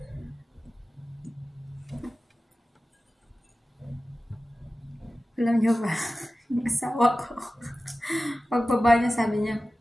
Alam nyo ba, yung asawa ko, pagbaba niya sabi niya,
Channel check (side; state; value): both; normal; correlation 0.95